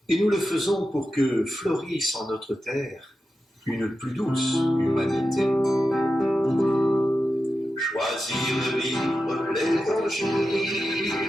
Et nous le faisons pour que fleurisse en notre terre une plus douce humanité. Choisir de vivre l'évangile,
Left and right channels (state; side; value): normal; both; correlation 0.91